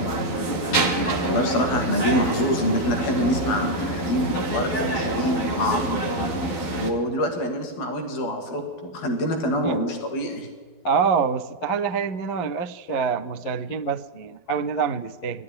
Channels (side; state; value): right; late; 12 ms